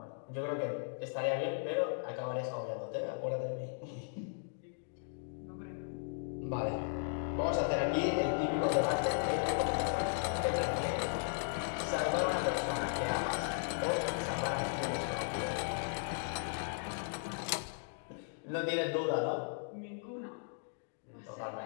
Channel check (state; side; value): silent; right; digital silence